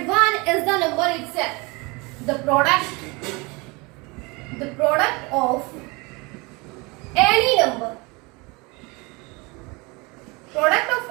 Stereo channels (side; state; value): left; quieter; 26.7 dB